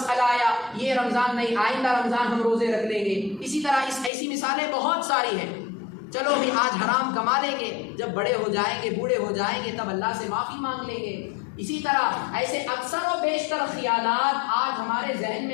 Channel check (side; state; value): right; drops out; at 4.1 s